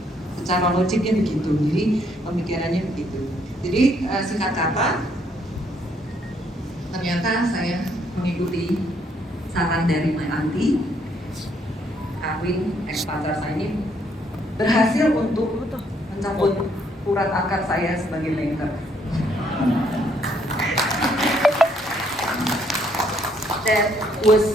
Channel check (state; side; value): normal; both; correlation 0.69